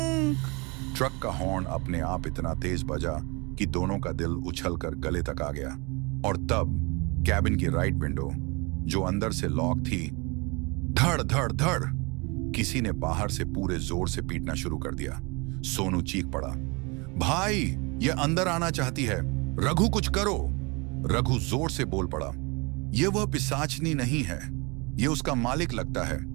ट्रक का हॉर्न अपने आप इतना तेज बजा कि दोनों का दिल उछलकर गले तक आ गया। और तब कैबिन की राइट विंडो, जो अंदर से लॉक थी, धड़ धड़ धड़ किसी ने बाहर से पूरे जोर से पीटना शुरू कर दिया। सोनू चीख पड़ा, भाई, ये अंदर आना चाहती है, रघु कुछ करो। रघु जोर से बोल पड़ा, यह वह पिशाचनी नहीं है, यह उसका मालिक लगता है,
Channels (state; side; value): quieter; left; 28.6 dB